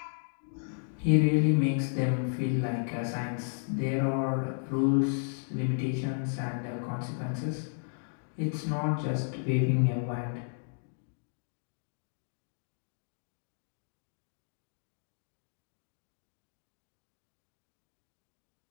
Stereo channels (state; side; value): silent; right; digital silence